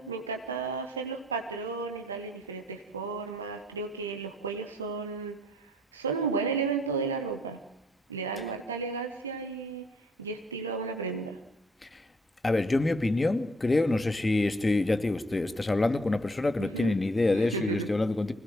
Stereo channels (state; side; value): normal; both; correlation 0.65